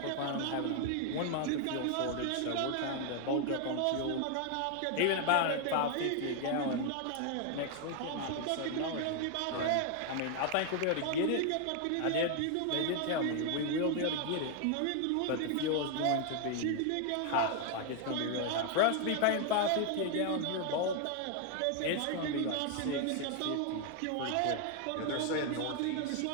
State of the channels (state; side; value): different; both; correlation 0.00